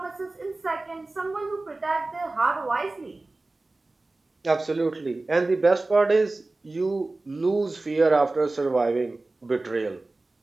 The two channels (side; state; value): left; quieter; 3.1 dB